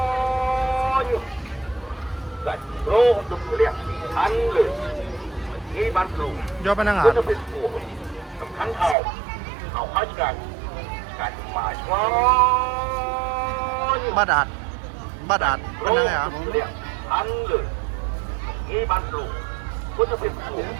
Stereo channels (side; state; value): left; drops out; at 9.0 s